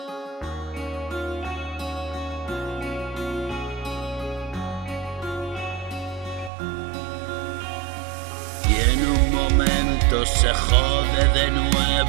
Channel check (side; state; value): left; drops out; at 6.5 s